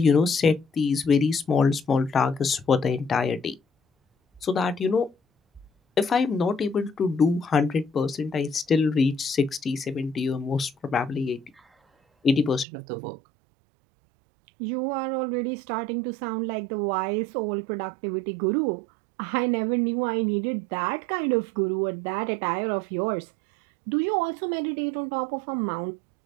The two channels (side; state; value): left; drops out; at 12.7 s